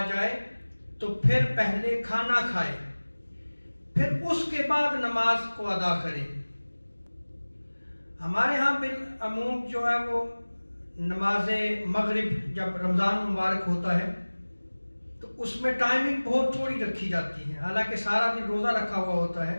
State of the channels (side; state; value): both; inverted; correlation -1.00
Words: جائے تو پھر پہلے کھانا کھائے، پھر اس کے بعد نماز کو ادا کرے۔ ہمارے ہاں بالعموم جو ہے وہ نماز مغرب جب رمضان مبارک ہوتا ہے تو اس میں ٹائمنگ بہت تھوڑی رکھی جاتی ہے، حالانکہ سارا دن روزہ رکھا ہوا ہوتا ہے،